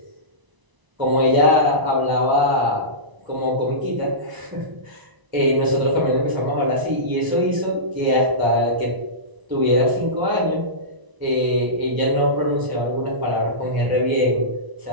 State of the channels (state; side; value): late; left; 1.0 ms